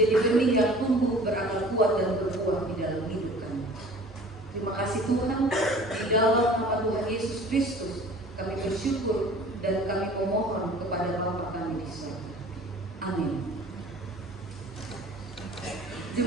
benih yang tumbuh berakar kuat dan berbuah di dalam hidup kami. Terima kasih Tuhan, di dalam nama Tuhan Yesus Kristus kami bersyukur dan kami memohon kepada Bapa kami di surga. Amin.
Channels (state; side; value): normal; both; correlation 0.46